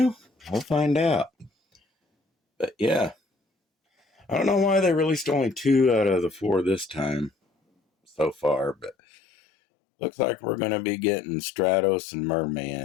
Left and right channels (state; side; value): drops out; right; at 9.0 s